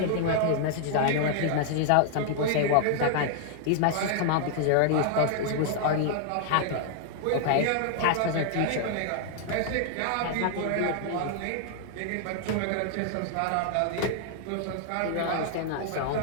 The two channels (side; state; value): both; different; correlation 0.00